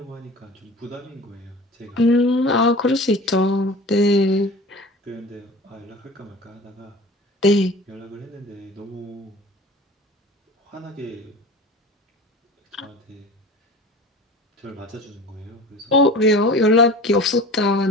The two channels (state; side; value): normal; both; correlation 0.39